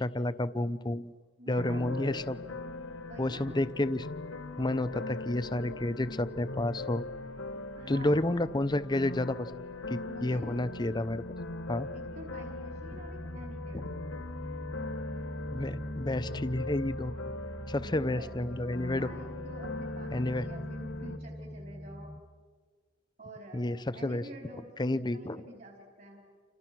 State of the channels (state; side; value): normal; both; correlation 0.71